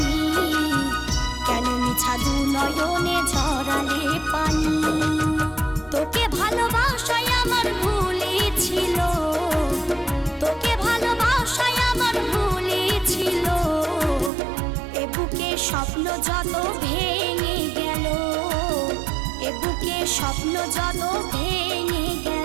কেন মিছা দু নয়নে ঝরালে পানি। তোকে ভালোবাসায় আমার ভুলে ছিল, তোকে ভালোবাসায় আমার ভুলে ছিল। এ বুকে স্বপ্ন যত ভেঙে গেল, এ বুকে স্বপ্ন যত ভেঙে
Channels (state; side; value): drops out; left; at 14.3 s